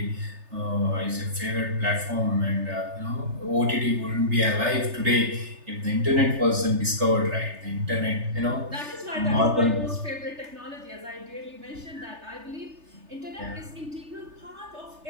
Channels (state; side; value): late; left; 3.3 ms